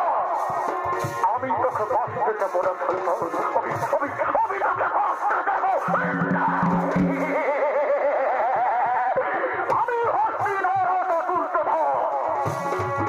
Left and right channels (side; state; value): both; identical; correlation 1.00